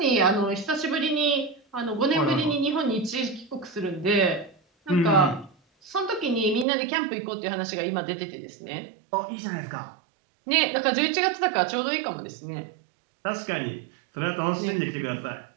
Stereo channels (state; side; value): drops out; left; at 6.7 s